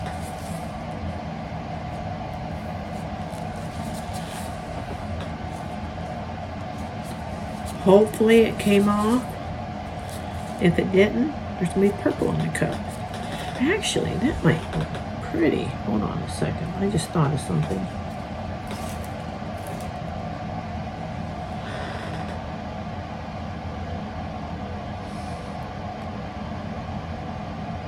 Hopefully it came off. If it didn't, there's gonna be purple in the cup. Actually, that might look pretty. Hold on a second. I just thought of something.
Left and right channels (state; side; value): identical; both; correlation 1.00